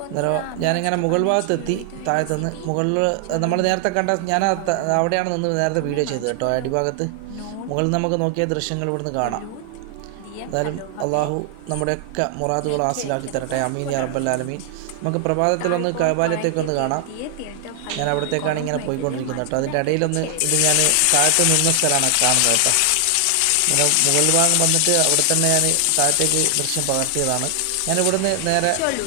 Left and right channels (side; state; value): both; different; correlation 0.00